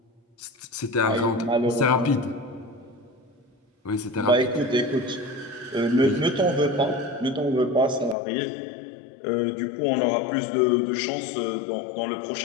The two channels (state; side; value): drops out; right; at 8.2 s